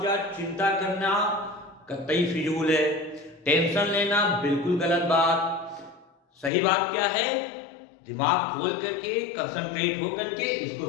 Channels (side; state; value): right; drops out; at 6.5 s